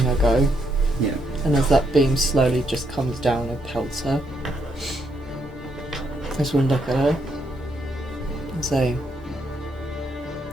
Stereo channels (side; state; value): both; normal; correlation 0.76